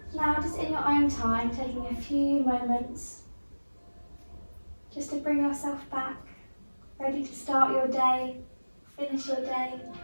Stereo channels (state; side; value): inverted; both; correlation -1.00